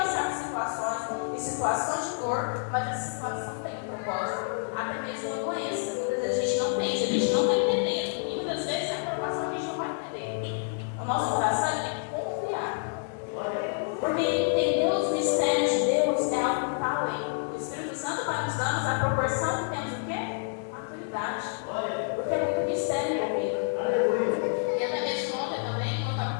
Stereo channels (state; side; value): silent; right; digital silence